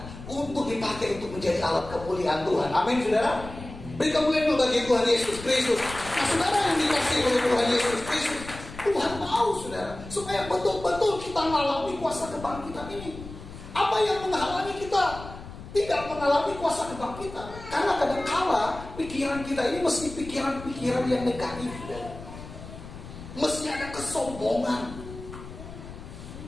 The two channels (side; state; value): left; noise; rumble, 13 dB below the sound